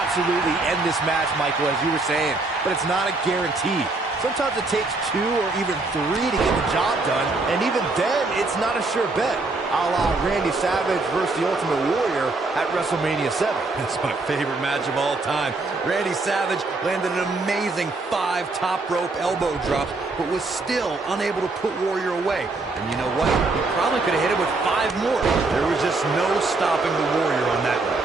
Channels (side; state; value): left; quieter; 3.4 dB